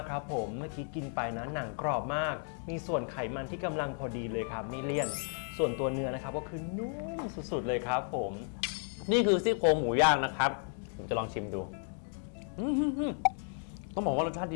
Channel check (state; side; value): silent; right; 55 dB below the other